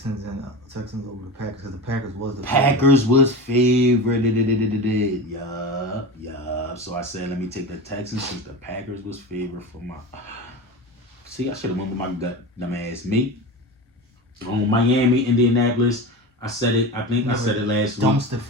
over the Packers because the Packers was the Packers was favored. Yeah. So I said, let me take the Texans since the Packers was favored for my. See, I should have went with my gut, dumbass me. Miami, Indianapolis. I said it. I think I said it last week. Dumpster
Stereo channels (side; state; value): both; normal; correlation 0.27